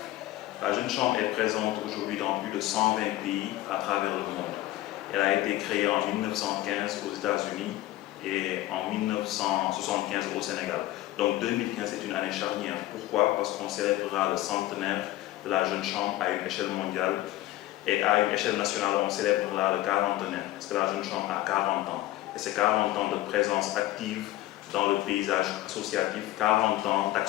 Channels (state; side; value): quieter; right; 15.9 dB